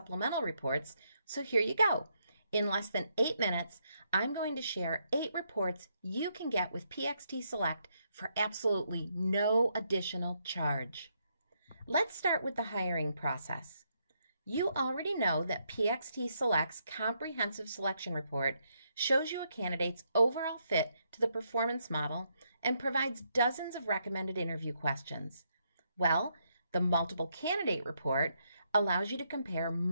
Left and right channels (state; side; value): inverted; both; correlation -0.77